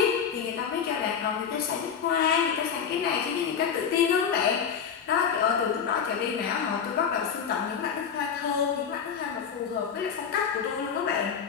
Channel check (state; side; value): quieter; right; 7.2 dB